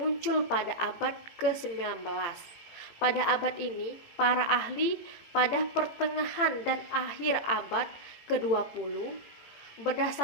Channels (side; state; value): right; late; 18 ms